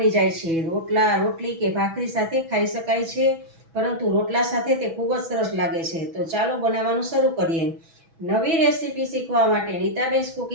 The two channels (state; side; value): late; left; 6.1 ms